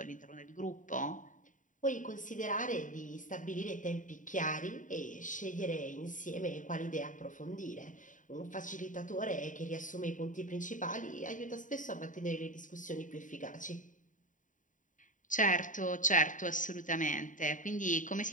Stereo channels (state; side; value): late; right; 0.38 ms